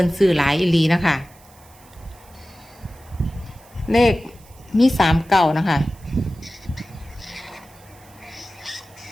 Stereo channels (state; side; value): noise; right; hiss, 26 dB below the sound